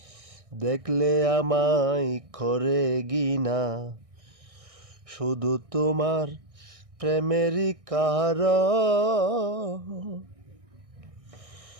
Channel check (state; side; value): late; left; 1.6 ms